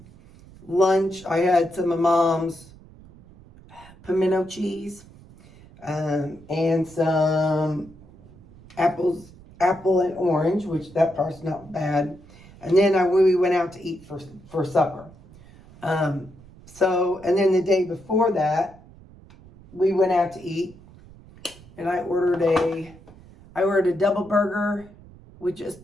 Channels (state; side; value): noise; right; rumble, 22 dB below the sound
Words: lunch, I had some of Mom's pimento cheese and some apple and orange, which that part's not bad. And then we went out to eat for supper. So, and then the day before that, we went out to eat, and I ordered a double burger with